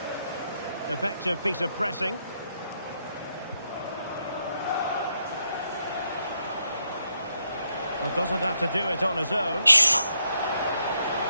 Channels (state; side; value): inverted; both; correlation -0.78